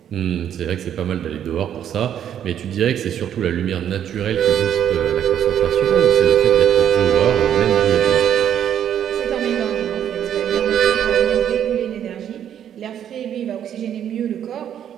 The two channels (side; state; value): left; quieter; 9.7 dB